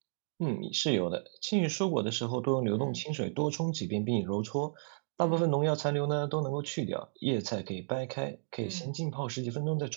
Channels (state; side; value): silent; left; digital silence